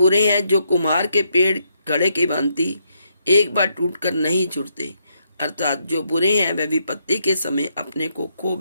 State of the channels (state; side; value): inverted; both; correlation -0.76